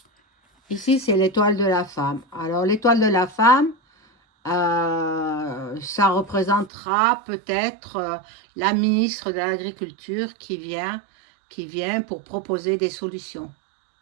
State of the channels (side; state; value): left; drops out; at 6.7 s